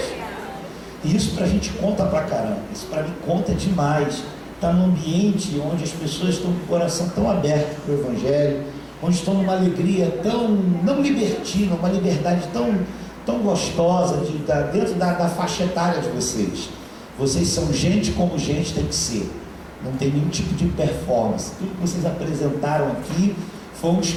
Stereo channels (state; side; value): identical; both; correlation 1.00